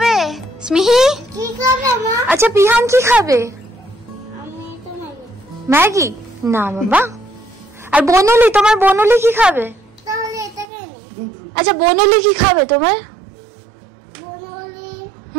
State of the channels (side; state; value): left; drops out; at 10.7 s